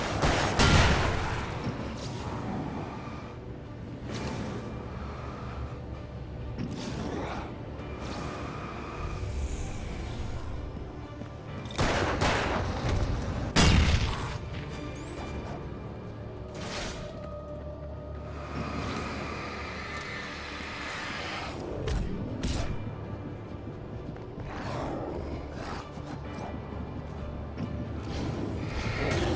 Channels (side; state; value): both; identical; correlation 1.00